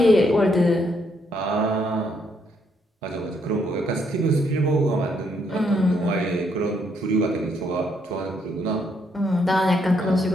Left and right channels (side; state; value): both; normal; correlation 0.73